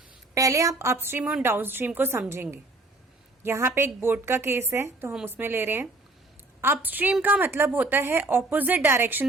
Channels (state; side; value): quieter; left; 3.0 dB